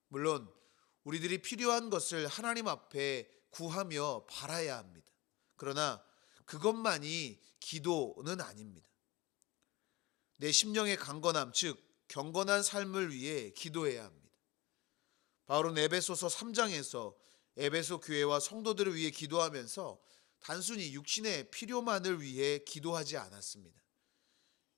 물론 우리들이 필요한 것을 하나님 앞에 구하며 바라야 합니다. 그러나 그것만이 기도는 아닙니다. 내 심령의 강건함, 즉 경건한 삶을 위해 기도해야 합니다. 바울은 에베소서 3장에서 에베소 교회와 성도들을 위해 기도하면서 단순히 육신의 필요만을 위해 기도하지 않았습니다.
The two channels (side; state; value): right; quieter; 20.8 dB